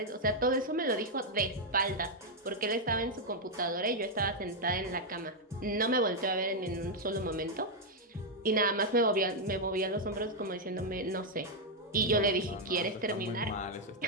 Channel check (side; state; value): both; normal; correlation -0.01